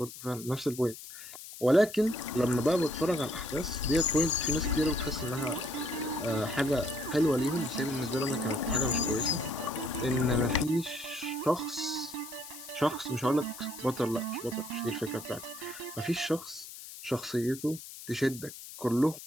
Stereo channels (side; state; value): left; noise; hiss, 13 dB below the sound